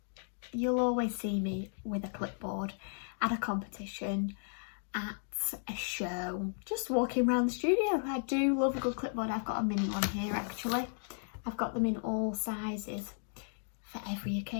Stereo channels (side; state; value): right; silent; digital silence